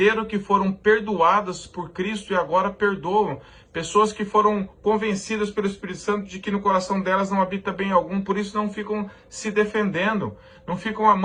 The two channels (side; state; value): both; identical; correlation 1.00